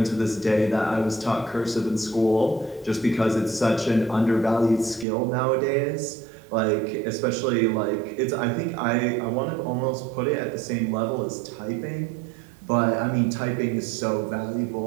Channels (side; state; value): left; drops out; at 5.1 s